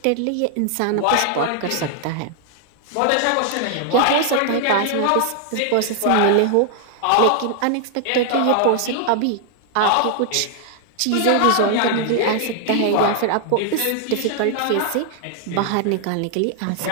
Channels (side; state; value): both; different; correlation 0.00